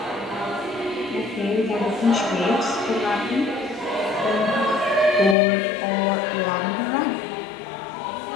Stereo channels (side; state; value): right; drops out; at 5.4 s